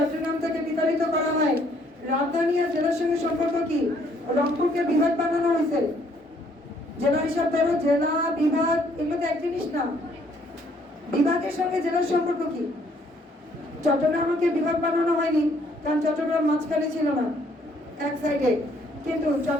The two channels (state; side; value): normal; both; correlation 0.65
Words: থেকে বিতাড়িত করা হয়। রাজধানী আর জেলার সঙ্গে সম্পর্ক কি? রংপুরকে বিভাগ বানানো হয়েছে। জেলা হিসাব করো, জেলা বিভাগ এগুলো তো এক জিনিস না। বিভাগের সঙ্গে জেলার সম্পর্ক কি? চট্টগ্রামকে বিভাগ বানানো হয়নি, কারণ চট্টগ্রাম মাঝখানে ছিল না, এক সাইডে। কিন্তু